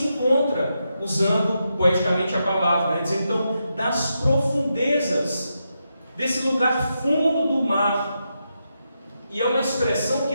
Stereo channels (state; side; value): inverted; both; correlation -0.85